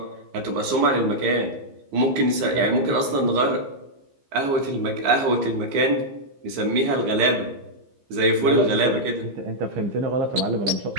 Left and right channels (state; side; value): late; left; 15 ms